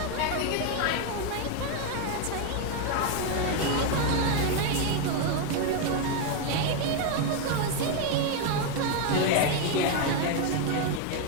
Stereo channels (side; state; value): both; different; correlation 0.01